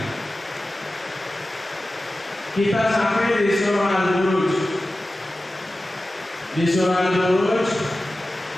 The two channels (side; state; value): both; normal; correlation 0.95